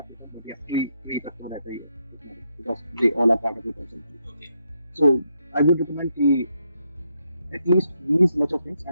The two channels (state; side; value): inverted; both; correlation -0.79